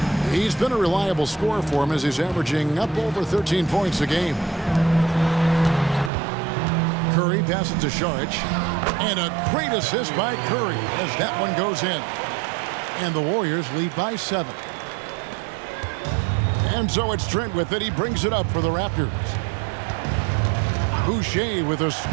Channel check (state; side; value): drops out; left; at 6.1 s